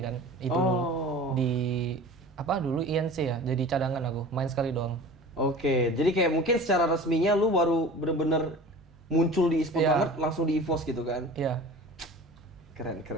kan. Itu di dulu INC ya, jadi cadangan aku, main sekali doang. Oke, jadi kayak mungkin secara resminya lu baru bener-bener muncul di e-sport Iya. banget langsung di EVOS gitu kan. Iya. Keren.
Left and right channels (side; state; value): both; normal; correlation 0.39